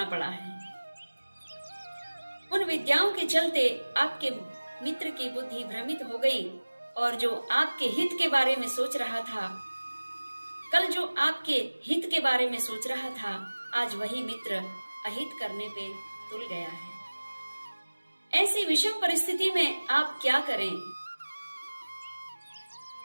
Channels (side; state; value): both; inverted; correlation -1.00